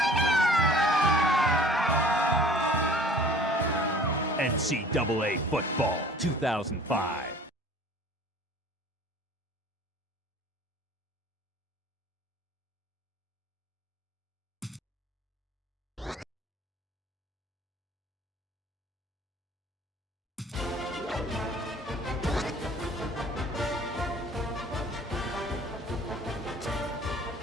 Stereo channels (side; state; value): both; normal; correlation 0.49